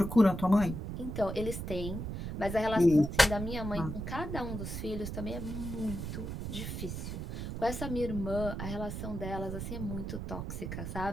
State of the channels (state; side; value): noise; right; rumble, 5 dB below the sound